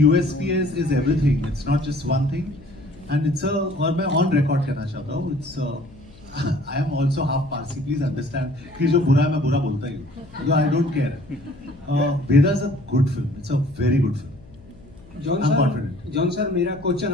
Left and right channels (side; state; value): left; noise; hum, 23 dB below the sound